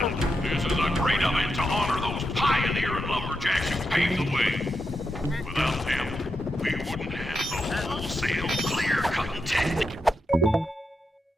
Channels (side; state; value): both; normal; correlation 0.85